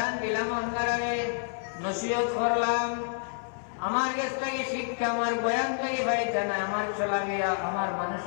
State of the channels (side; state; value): right; silent; 59 dB below the other